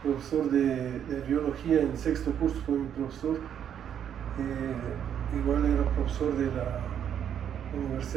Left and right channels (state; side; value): quieter; left; 9.1 dB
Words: profesor de biología en sexto curso, fue mi profesor. Igual era profesor de la